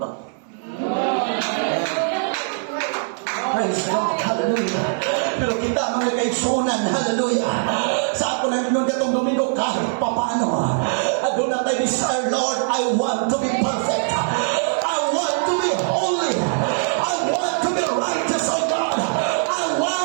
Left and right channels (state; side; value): silent; left; 57 dB below the other